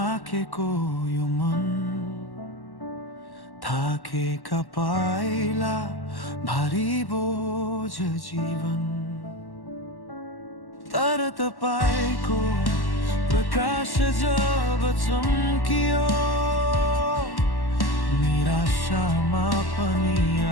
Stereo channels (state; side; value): late; right; 1.1 ms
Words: यो मन, थाकेका पाइला भारी बोझ जीवन। तर तपाईको प्रकाश जब चम्कियो, निराशामा पनि